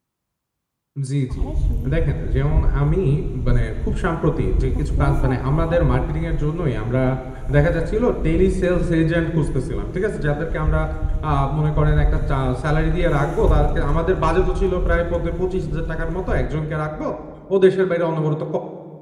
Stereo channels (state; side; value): identical; both; correlation 1.00